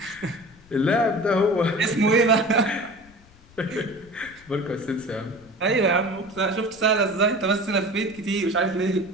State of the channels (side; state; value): left; noise; rumble, 26 dB below the sound